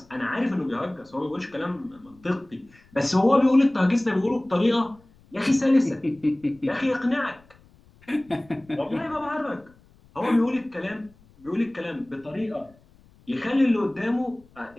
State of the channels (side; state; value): left; noise; rumble, 28 dB below the sound